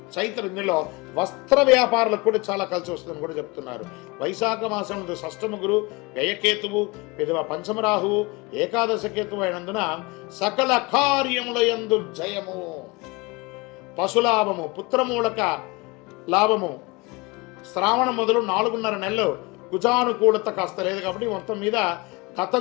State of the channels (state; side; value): quieter; right; 25.5 dB